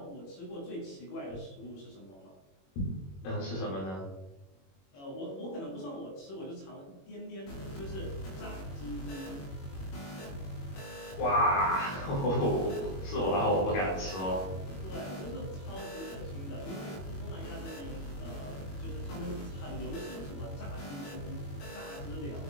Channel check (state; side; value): late; right; 21 ms